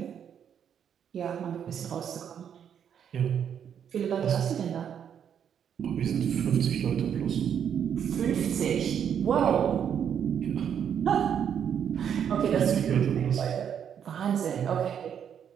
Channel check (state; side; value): quieter; left; 8.5 dB